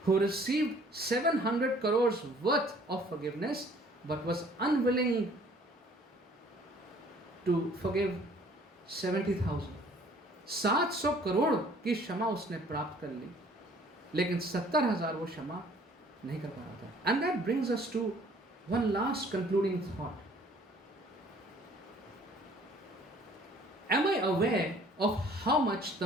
who received 700 crores worth of forgiveness but was unwilling to forgive 70,000. 700 crore की क्षमा उसने प्राप्त कर ली, लेकिन 70,000 वो क्षमा नहीं कर पा रहा था. And that brings us to one last concluding thought. Am I aware of how much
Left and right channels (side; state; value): both; normal; correlation 0.56